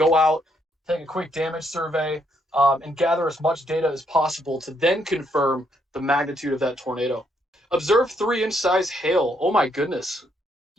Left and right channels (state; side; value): normal; both; correlation 0.74